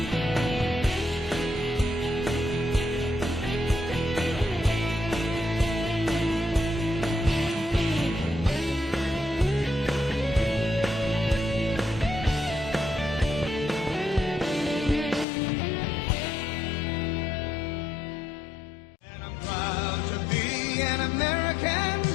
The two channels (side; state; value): right; drops out; at 15.2 s